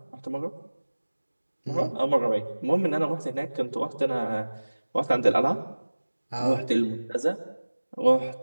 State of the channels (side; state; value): both; inverted; correlation -1.00